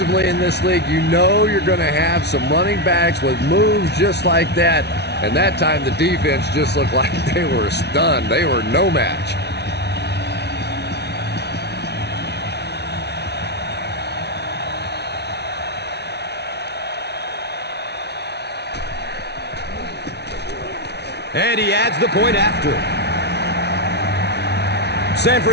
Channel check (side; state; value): right; late; 0.49 ms